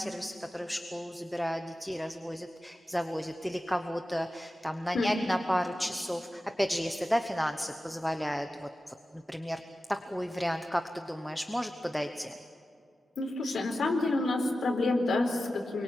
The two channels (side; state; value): both; normal; correlation 0.93